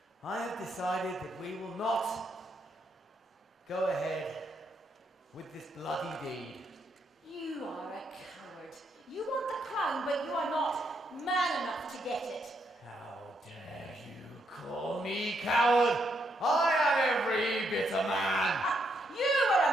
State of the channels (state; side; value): normal; both; correlation 0.77